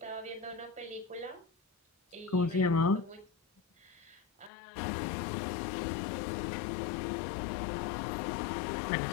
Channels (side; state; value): right; drops out; at 4.5 s